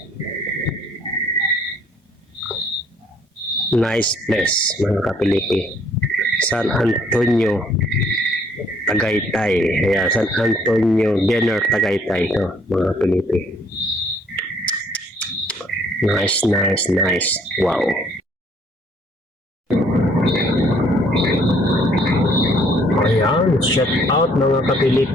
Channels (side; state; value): both; normal; correlation 0.63